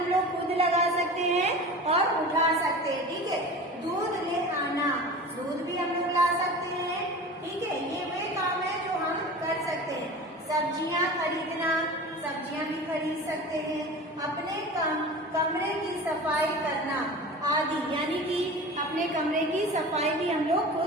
लोग खुद लगा सकते हैं और उठा सकते हैं, ठीक है। दूध ले आना, दूध भी हम लोग ला सकते हैं, ठीक है। ये वे काम है जो हम कर सकते हैं। सब्जियां खरीदना, सब्जियां भी खरीद सकते हैं। अपने कमरे की सफाई करना आदि, यानी कि अपने कमरे की सफाई भी हम लोग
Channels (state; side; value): normal; both; correlation 0.35